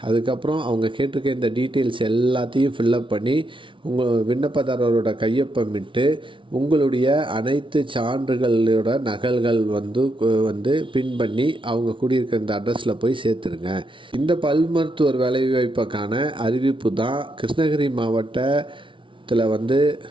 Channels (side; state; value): left; late; 0.25 ms